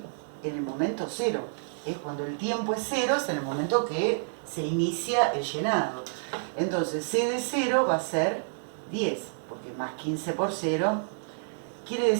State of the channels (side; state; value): left; silent; 59 dB below the other